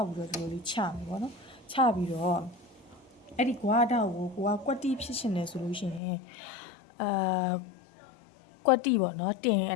က်ပြီးတော့ဒီလိုလေးချမယ်ပေါ့နော်ချပြီးတော့အဲ့ဒီကွာတောက်ကိုကွက်တိဖြစ်ရှင်နေဆိုလို့ရှိရင်ကွက်တိပေါ့နော်တင်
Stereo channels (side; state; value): right; drops out; at 6.0 s